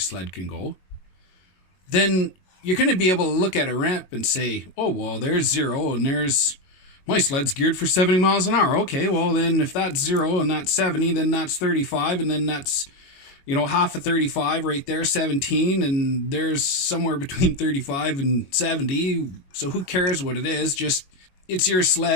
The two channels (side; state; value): right; late; 21 ms